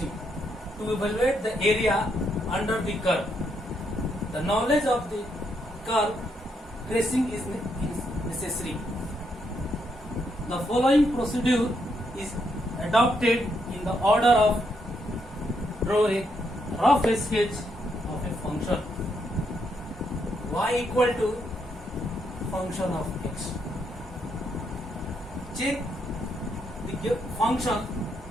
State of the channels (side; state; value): both; normal; correlation 0.77